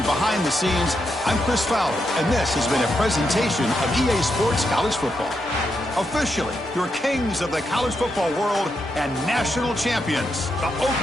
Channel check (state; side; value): normal; both; correlation 0.83